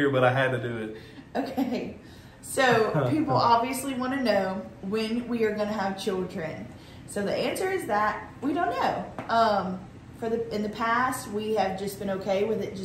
but I had to do it. Okay. So, people obviously want to know when we are going to have children. So, the answer is that we don't know. In the past, we have just been okay with it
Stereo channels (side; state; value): both; identical; correlation 1.00